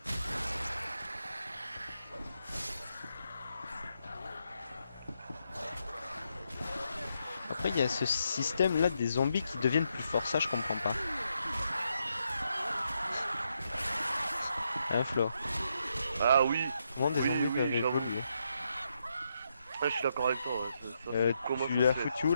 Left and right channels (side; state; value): both; inverted; correlation -0.80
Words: Après, il y a ce système là des zombies qui deviennent plus forts, ça je comprends pas. Hein, Flo? Ah oui, Comment des oui, zombies oui, peuvent j'avoue. évoluer? Ah, je suis d'accord avec toi, ouais. Comment Tu ça l'as se fait? foutu où